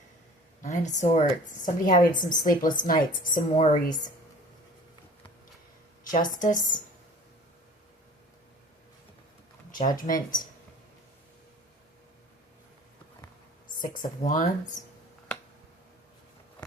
Nine of Swords. Somebody having some sleepless nights, some worries. Justice. Judgment. Six of Wands.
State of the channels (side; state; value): both; normal; correlation 0.45